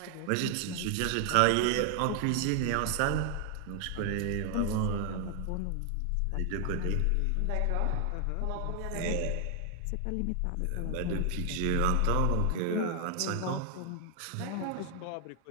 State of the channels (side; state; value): both; different; correlation 0.00